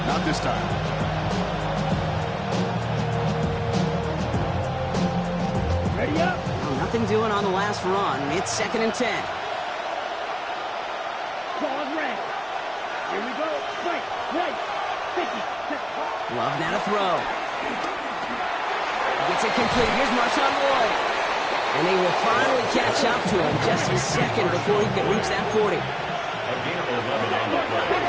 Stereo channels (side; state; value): both; identical; correlation 1.00